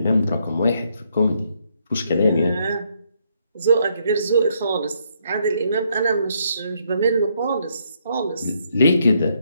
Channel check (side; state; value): both; inverted; correlation -0.73